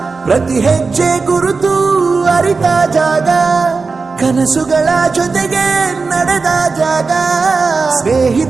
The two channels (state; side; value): quieter; left; 4.4 dB